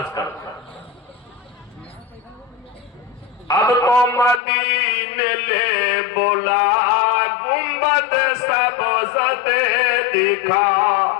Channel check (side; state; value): right; drops out; at 4.4 s